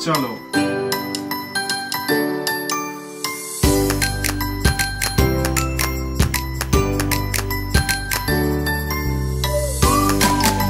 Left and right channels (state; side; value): identical; both; correlation 1.00